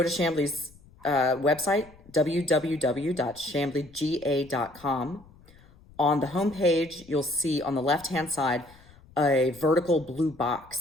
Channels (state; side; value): noise; left; rumble, 25 dB below the sound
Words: to Chamblee's website, www.chambleega.com. On the homepage, you'll see on the left-hand side a vertical blue